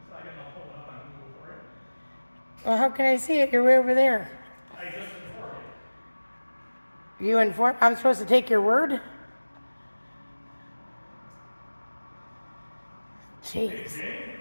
So I can pull it up on Google for it. Well, how can I see it? You're way over there. I just informed you. You inform? I'm supposed to take your word? Jeez. Jane,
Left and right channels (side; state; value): both; inverted; correlation -1.00